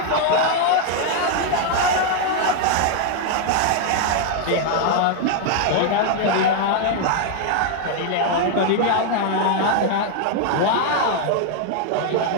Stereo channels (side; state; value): both; different; correlation 0.00